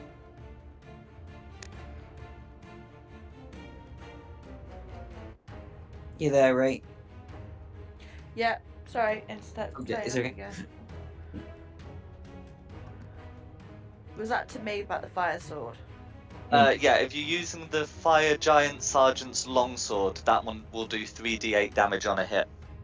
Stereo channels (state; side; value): identical; both; correlation 1.00